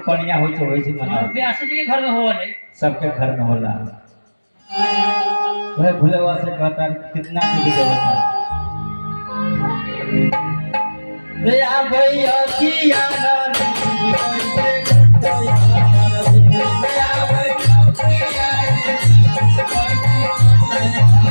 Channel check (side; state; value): both; inverted; correlation -1.00